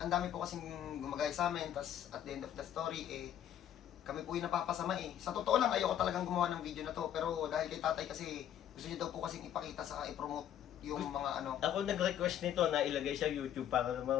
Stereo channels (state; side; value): quieter; right; 10.5 dB